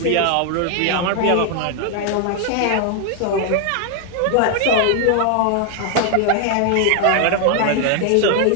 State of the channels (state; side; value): different; both; correlation 0.00